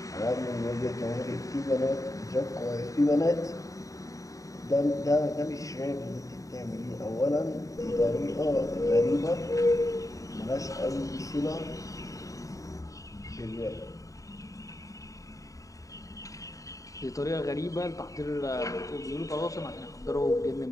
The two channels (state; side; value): late; right; 0.16 ms